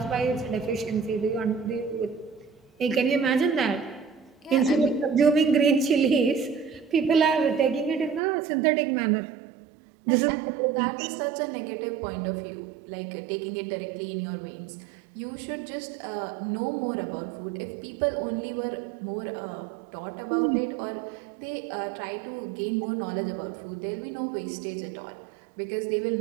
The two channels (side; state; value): left; drops out; at 8.2 s